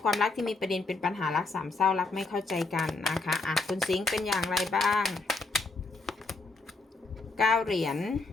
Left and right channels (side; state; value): right; quieter; 3.5 dB